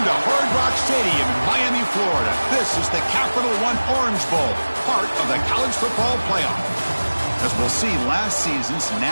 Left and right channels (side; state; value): both; inverted; correlation -1.00